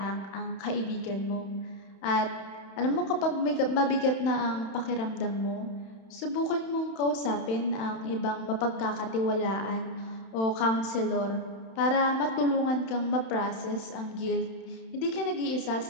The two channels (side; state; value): right; late; 31 ms